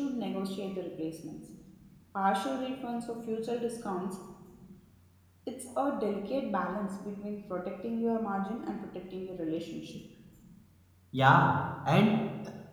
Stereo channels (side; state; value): both; identical; correlation 1.00